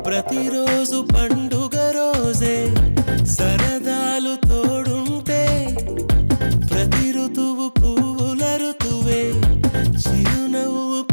ప్రతిరోజు పండుగ రోజే సరదాలు తోడుంటే ప్రతి ఋతువు పువ్వుల ఋతువే చిరునవ్వు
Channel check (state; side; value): inverted; both; correlation -1.00